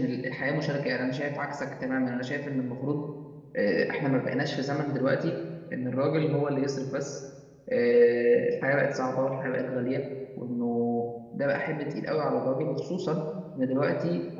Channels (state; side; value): identical; both; correlation 1.00